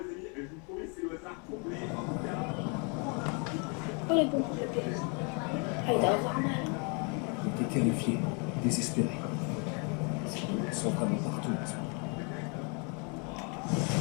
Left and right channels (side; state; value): right; quieter; 35.3 dB